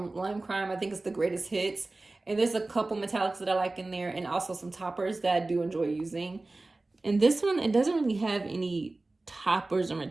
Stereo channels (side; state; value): left; quieter; 3.1 dB